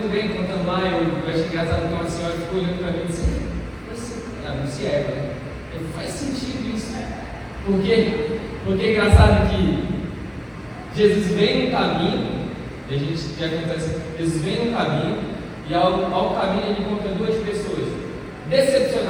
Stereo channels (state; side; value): identical; both; correlation 1.00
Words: bem, contando lá, eu achei engraçado que uma senhora ficou olhando para mim e disse: não se é, né? Faz sentido isso, né? Por quê? Porque é engraçado que Jesus vem no caminho, e a gente já acontece, Jesus vem no caminho, e ao caminho ele encontra duas pessoas